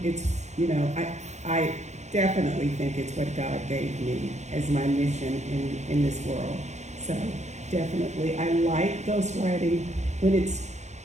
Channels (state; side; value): late; left; 0.33 ms